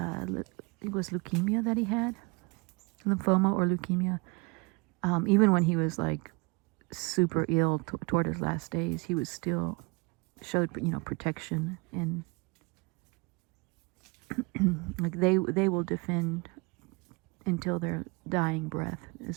it was leukemia that he had, lymphoma or leukemia. Even when he was super ill toward his last days, he was still showed protection, and they will defend until their dying breath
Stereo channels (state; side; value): quieter; left; 29.1 dB